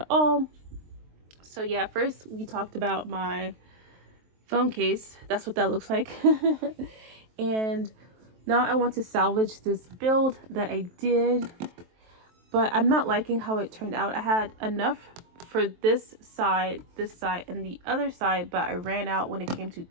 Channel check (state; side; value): late; left; 23 ms